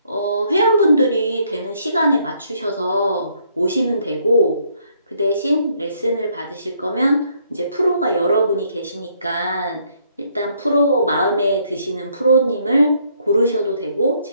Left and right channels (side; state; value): both; inverted; correlation -0.68